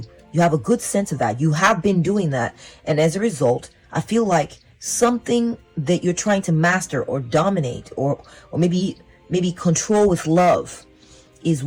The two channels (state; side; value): identical; both; correlation 1.00